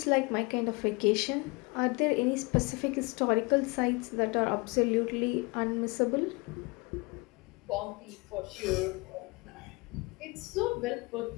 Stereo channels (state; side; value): quieter; right; 27.2 dB